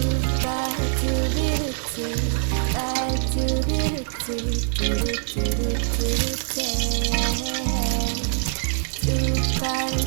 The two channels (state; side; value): silent; left; 63 dB below the other